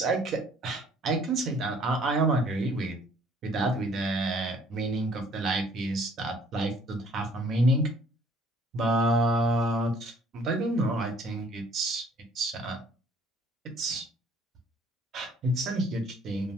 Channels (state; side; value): normal; both; correlation 0.58